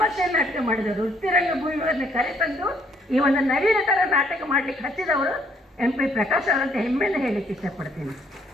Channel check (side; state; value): both; normal; correlation 0.67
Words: ನಾಟಕ ಮಾಡಿದವರು. ವೃತ್ತಿ ರಂಗಭೂಮಿಯವರನ್ನ ಕರೆತಂದು ಈ ಒಂದು ನವೀನ ಥರ ನಾಟಕ ಮಾಡಲಿಕ್ಕೆ ಹಚ್ಚಿದವರು MP ಪ್ರಕಾಶ್ ಅವರಂತ ಹೆಮ್ಮೆಯಿಂದ ಹೇಳಲಿಕ್ಕೆ ಇಷ್ಟಪಡ್ತೀನಿ.